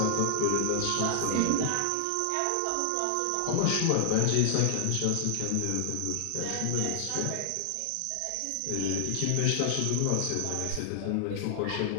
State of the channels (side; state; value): both; different; correlation 0.00